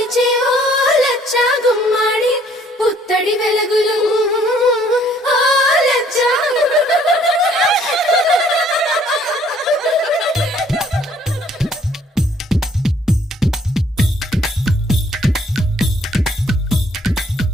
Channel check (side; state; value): both; normal; correlation 0.61